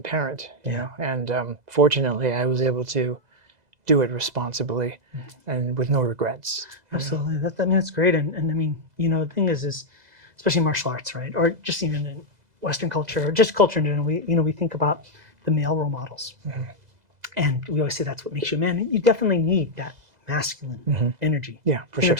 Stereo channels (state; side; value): late; left; 2.0 ms